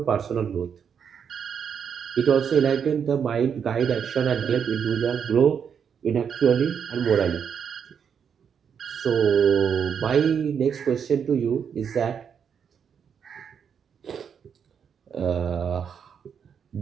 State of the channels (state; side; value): quieter; left; 7.3 dB